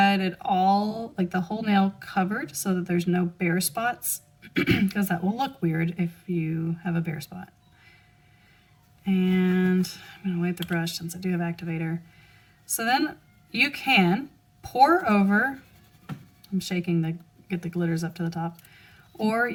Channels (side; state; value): both; identical; correlation 1.00